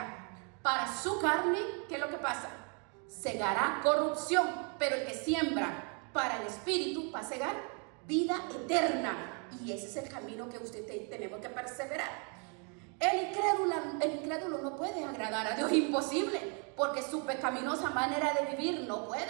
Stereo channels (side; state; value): left; quieter; 37.4 dB